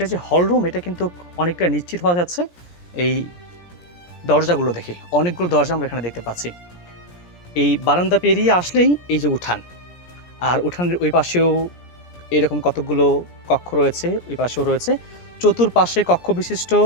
যে হল রুম এটা কিন্তু অনেকটা নিশ্চিত হওয়া যাচ্ছে এই দরজাগুলো দেখে। অনেকগুলো দরজা আমরা এখানে দেখতে পাচ্ছি। এই বারান্দা পেরিয়ে আসলেই এই যে উঠান, আর উঠানের ওই পাশেও এরকম কতগুলো কক্ষ রয়েছে, ওই পাশেও রয়েছে, চতুর্পাশে কক্ষ বিশিষ্ট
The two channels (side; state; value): right; late; 17 ms